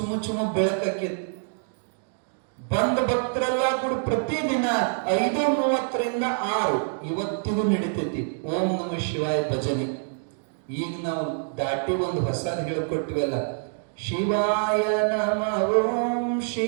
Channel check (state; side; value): silent; left; digital silence